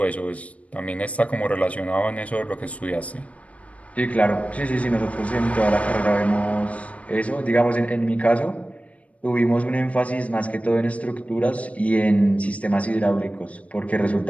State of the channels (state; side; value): late; right; 0.065 ms